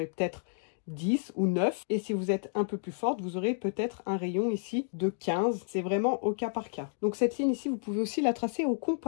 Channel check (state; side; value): silent; right; digital silence